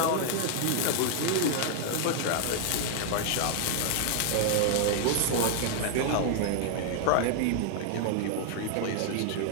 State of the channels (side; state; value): both; different; correlation 0.00